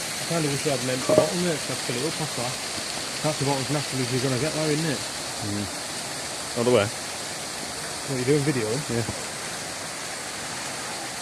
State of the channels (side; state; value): both; identical; correlation 1.00